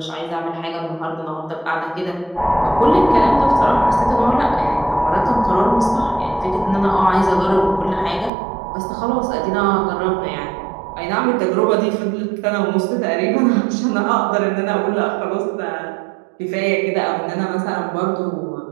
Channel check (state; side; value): drops out; left; at 8.3 s